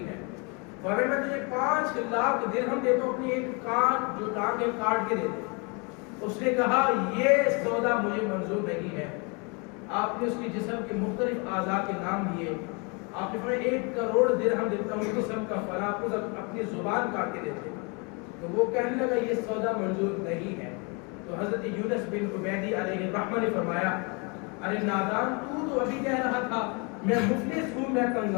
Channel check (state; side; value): quieter; right; 32.0 dB